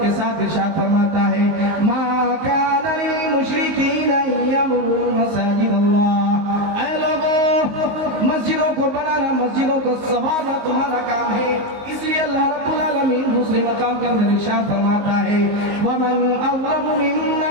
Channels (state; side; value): late; left; 19 ms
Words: کے ساتھ ارشاد فرماتا ہے، ما کان للمشرکین ان یعمروا مساجد اللہ۔ اے لوگوں، مسجدوں کو بنانا، مسجدوں کو سنوارنا تمہارا کام ہے، اس لیے اللہ رب العالمین دوسرے مقام کے اندر ارشاد فرماتا ہے، ومن اظلم